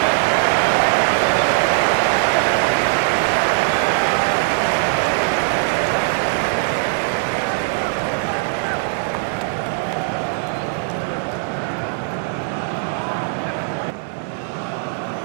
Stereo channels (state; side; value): silent; left; digital silence